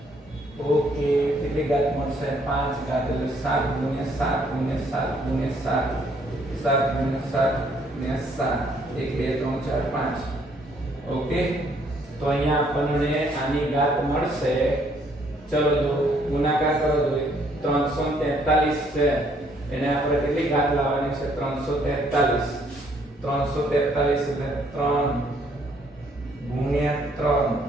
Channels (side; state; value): both; normal; correlation 0.66